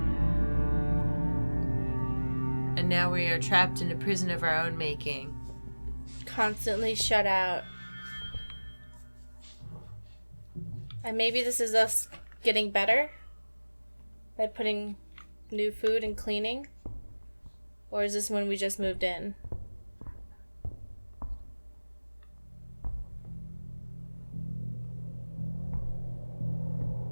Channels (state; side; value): inverted; both; correlation -1.00